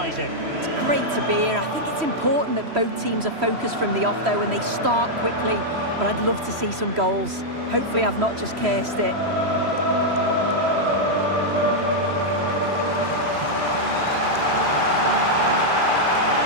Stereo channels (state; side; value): late; left; 3.1 ms